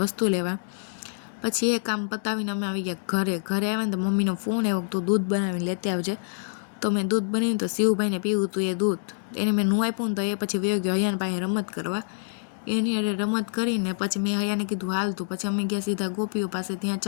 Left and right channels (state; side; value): silent; right; digital silence